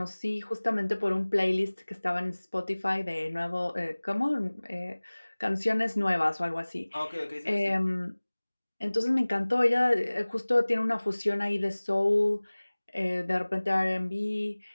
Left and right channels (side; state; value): both; inverted; correlation -1.00